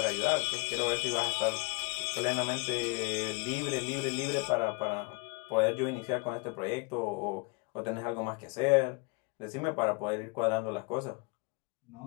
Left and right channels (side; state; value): right; quieter; 30.8 dB